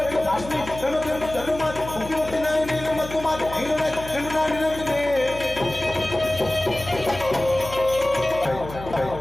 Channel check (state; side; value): noise; left; hum, 13 dB below the sound